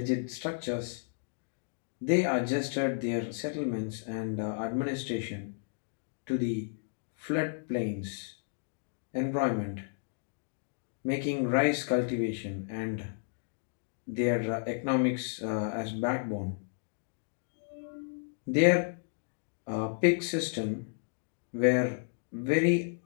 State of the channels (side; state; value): right; silent; digital silence